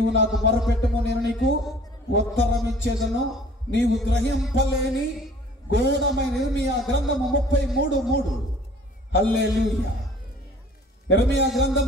నాకు మొరపెట్టము, నేను నీకు ఉత్తరం ఇచ్చేదను. నీవు గ్రహింపలేని ఘోరమైన ఇర్మియా గ్రంథము 33:3. హల్లెలూయా. ఇర్మియా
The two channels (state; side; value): normal; both; correlation 0.50